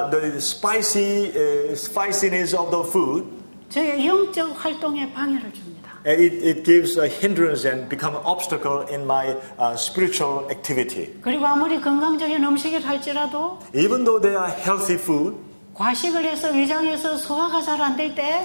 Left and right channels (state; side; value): inverted; both; correlation -1.00